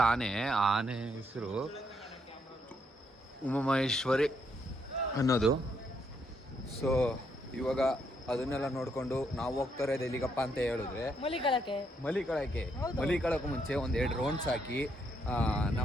ಆನೆ ಹೆಸರು ಉಮಾಮಹೇಶ್ವರಿ ಅನ್ನೋದು. ಸೊ ಇವಾಗ ಅದನ್ನೆಲ್ಲ ನೋಡ್ಕೊಂಡು ನಾವು ಹೋಗ್ತಾರೆ ಎಲ್ಲಿಗಪ್ಪ ಅಂತ ಹೇಳಿದ್ರೆ ಮಲಿಕಳಕ್ಕೆ ಮುಂಚೆ ಒಂದೆರಡು ರೌಂಡ್ಸ್ ಹಾಕಿ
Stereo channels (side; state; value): both; normal; correlation 0.75